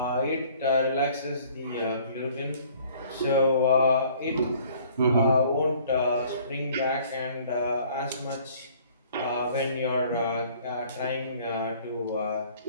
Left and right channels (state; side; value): inverted; both; correlation -0.55